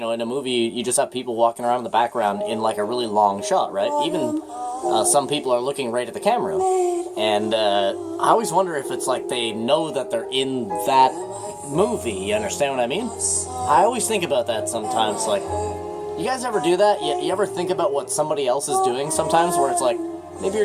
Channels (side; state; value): both; identical; correlation 1.00